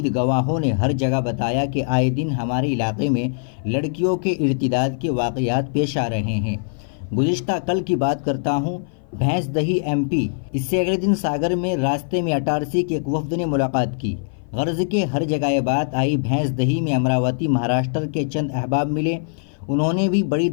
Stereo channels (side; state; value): right; silent; 56 dB below the other